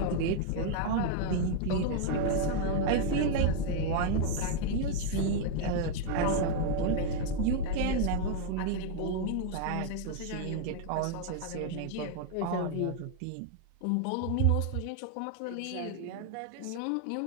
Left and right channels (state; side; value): different; both; correlation 0.00